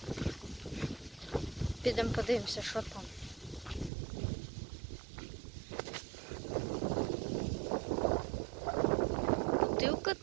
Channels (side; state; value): left; drops out; at 3.9 s